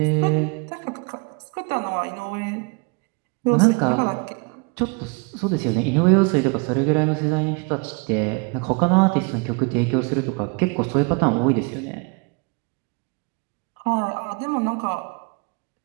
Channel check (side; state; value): left; quieter; 32.8 dB